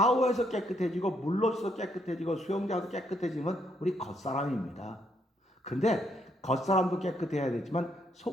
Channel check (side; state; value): both; normal; correlation 0.73